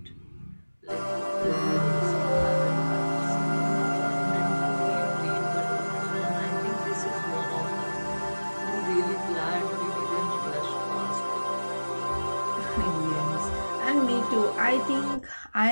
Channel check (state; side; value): inverted; both; correlation -1.00